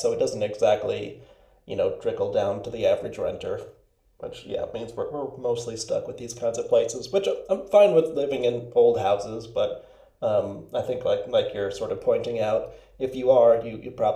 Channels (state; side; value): identical; both; correlation 1.00